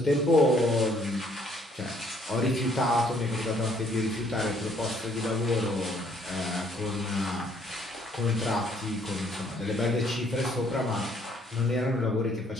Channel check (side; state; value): both; normal; correlation 0.64